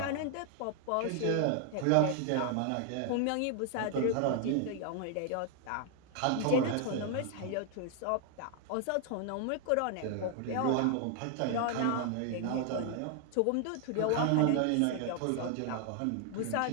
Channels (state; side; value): different; both; correlation 0.00